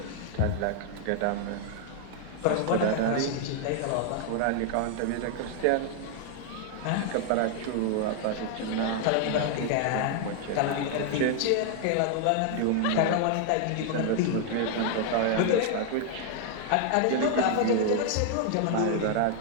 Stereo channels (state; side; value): different; both; correlation 0.00